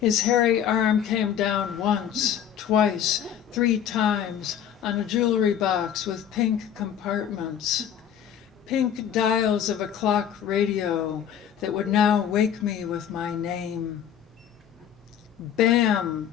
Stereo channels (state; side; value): quieter; right; 9.2 dB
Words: hairy arm came down once, twice, 3 times on a jewelry box with pink compartments, pink dials of a clock radio that would now wake me with my name. Bam!